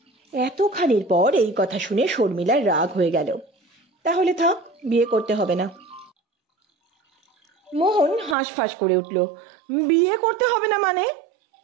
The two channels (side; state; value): left; drops out; at 8.3 s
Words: এতখানির পর এই কথা শুনে শর্মিলার রাগ হয়ে গেল। তাহলে থাক, বিয়ে করতে হবে না। মোহন হাঁসফাঁস করে উঠল। বিয়ে করতে হবে না মানে?